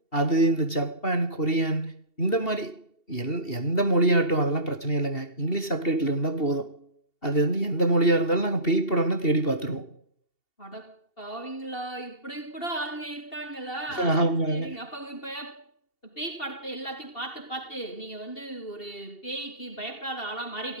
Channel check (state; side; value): late; right; 2.7 ms